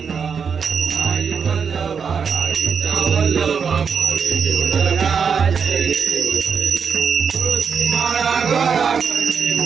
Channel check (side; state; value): left; quieter; 6.4 dB